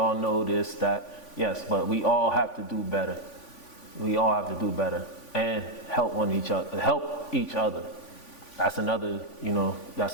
know this, that. Yes, but we all have to do better. We all have to do better and help each other. That's another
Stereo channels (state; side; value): late; right; 3.5 ms